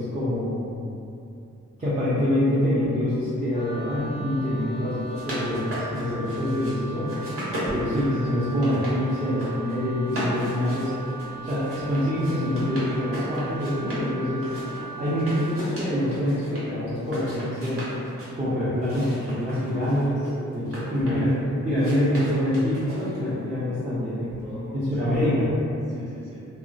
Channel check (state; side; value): normal; both; correlation 0.60